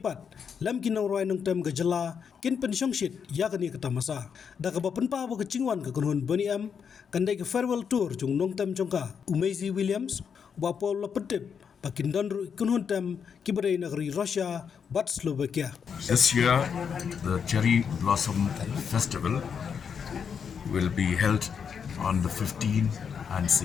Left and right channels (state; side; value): quieter; right; 6.9 dB